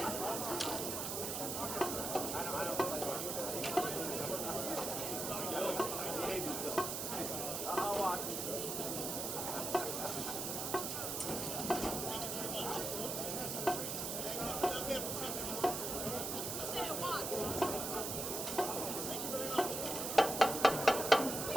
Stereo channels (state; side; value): noise; right; hiss, 2 dB below the sound